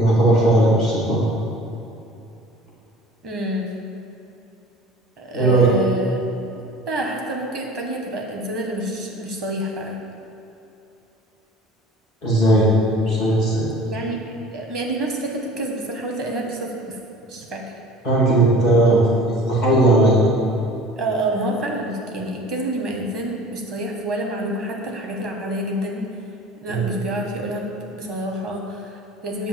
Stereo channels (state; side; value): normal; both; correlation 0.44